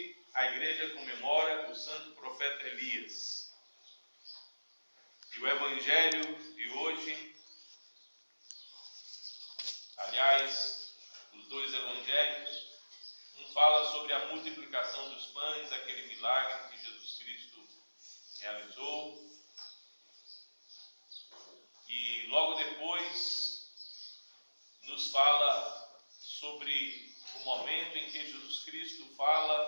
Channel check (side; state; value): both; inverted; correlation -1.00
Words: a igreja comemora o santo profeta Elias. E o evangelho de hoje, aliás, os dois evangelhos, um fala sobre a multiplicação dos pães, aquele milagre que Jesus Cristo realizou. E logo depois nos fala sobre o momento em que Jesus Cristo